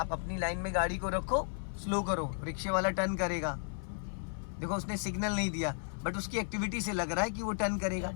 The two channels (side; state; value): right; silent; 55 dB below the other